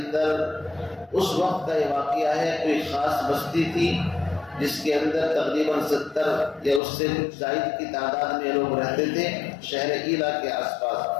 اس وقت کا یہ واقعہ ہے، کوئی خاص بستی تھی جس کے اندر تقریباً 70 یا اس سے کچھ زائد کی تعداد میں لوگ رہتے تھے شہر ایلا کے آس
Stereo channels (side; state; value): right; drops out; at 6.8 s